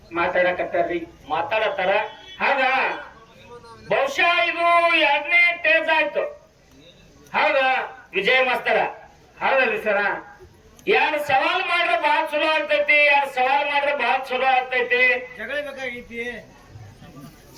ಮಾತಾಡತ್ತಾರ. ಹೌದಾ? ಬಹುಶಃ ಇದು 2ನೇ ಟೇಜ್ ಆಯ್ತು. ಹೌದಾ ವಿಜಯ ಮಾಸ್ತರ? ಹೌದಲ್ರಿ ಸರ. ಎರಡು ಸವಾಲ್ ಮಾಡ್ರೆ ಬಹಳ ಚಲೋ ಆಗ್ತೈತಿ, ಎರಡು ಸವಾಲ್ ಮಾಡ್ರೆ ಬಹಳ ಚಲೋ ಆಗ್ತೈತಿ.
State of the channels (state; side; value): identical; both; correlation 1.00